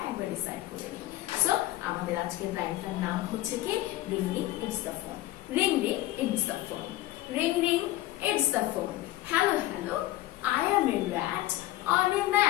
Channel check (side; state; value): right; quieter; 16.3 dB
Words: একবার রিসাইট করে নিই। সো আমাদের আজকের লাইনটার নাম হচ্ছে কি? Ring ring it's the phone. Ring ring it's the phone. Ring ring it's the phone. Hello, hello, I am a rat on a